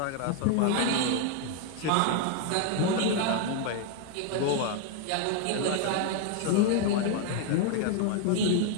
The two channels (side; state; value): both; different; correlation 0.00